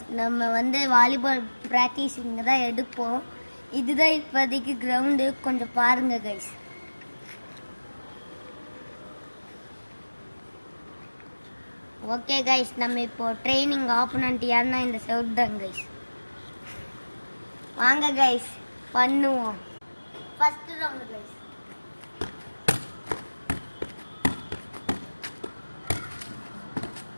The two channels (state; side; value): inverted; both; correlation -1.00